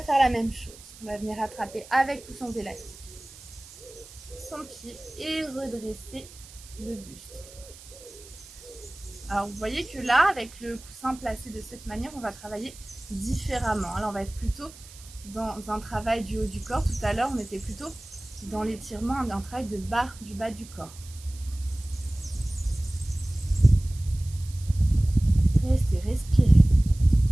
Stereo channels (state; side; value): noise; right; hiss, 19 dB below the sound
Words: faire la même chose. On va venir attraper avec ou sans élastique son pied et redresser le buste. Alors vous voyez que là, avec le coussin placé de cette manière, on va travailler différemment. Alors on va être plutôt dans un travail du haut du corps. Tout à l'heure, on était plutôt dans l'étirement, un travail du bas du corps. Restez, respirez.